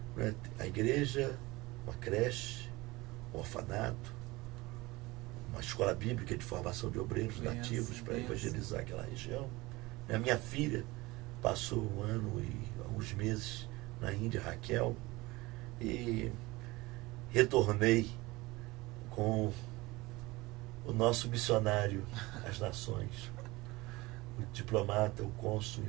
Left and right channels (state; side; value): quieter; left; 21.5 dB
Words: né, a igreja, uma creche, um orfanato, uma escola bíblica de formação de obreiros nativos para evangelizar aquela região. A minha filha passou 1 ano e alguns meses na Índia, Raquel, e retornei com o nosso missionário às nações, o diplomata, o cônsul, o